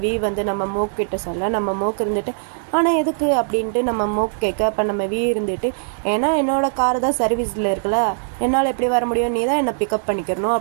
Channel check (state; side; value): silent; left; digital silence